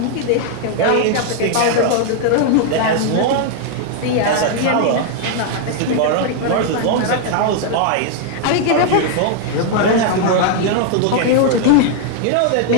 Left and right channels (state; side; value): different; both; correlation 0.00